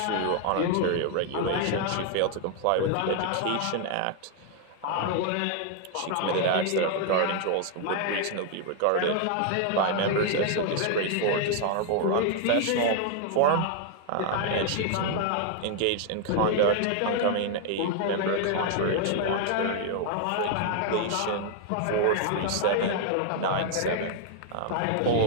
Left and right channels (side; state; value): both; different; correlation 0.00